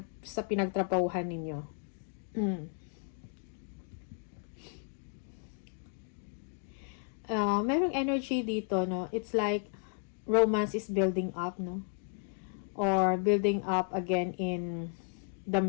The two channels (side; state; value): right; silent; 55 dB below the other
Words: ninyo. Merong energy dito, no? It's like romance is building up, no? Or building up again in